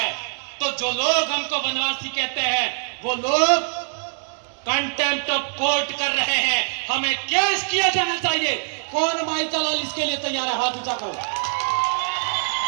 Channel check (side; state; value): left; silent; 63 dB below the other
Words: तो जो लोग हमको वनवासी कहते हैं वो लोग कंटेम्प्ट ऑफ कोर्ट कर रहे हैं। हमें केस किया जाना चाहिए। कौन माइका लाल इसके लिए तैयार है? हाथ ऊंचा करो।